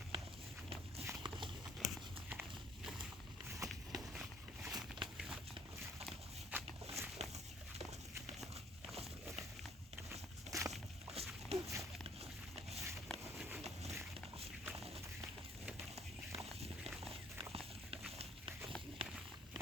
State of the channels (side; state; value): both; normal; correlation 0.60